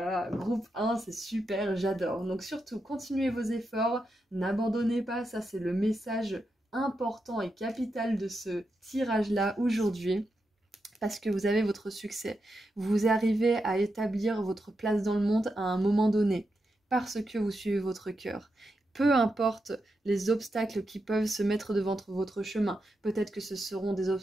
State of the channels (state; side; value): normal; both; correlation 0.86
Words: groupe 1, c'est super, j'adore. Donc surtout, continuez vos efforts, n'abandonnez pas, ça c'est le message important et capital de ce tirage-là aujourd'hui. Parce que vous avez votre succès. Vous arrivez à établir votre place dans le monde à un moment donné, parce que vous suivez votre cœur. Peu importe les obstacles qui peuvent se mettre devant votre chemin. Peut-être que ce seront des